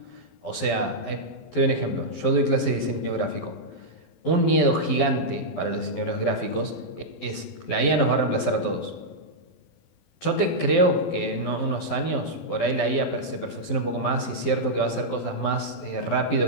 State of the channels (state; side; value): late; right; 12 ms